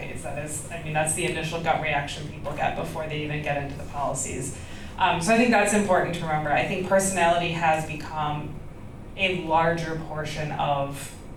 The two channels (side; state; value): both; identical; correlation 1.00